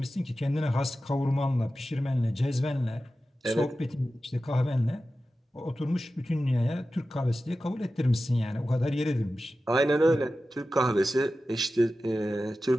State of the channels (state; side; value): normal; both; correlation 0.93